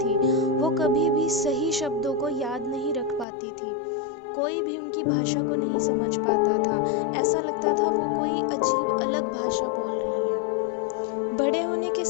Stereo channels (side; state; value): right; drops out; at 3.2 s